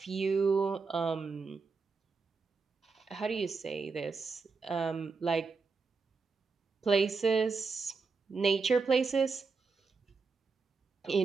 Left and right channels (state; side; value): quieter; left; 4.6 dB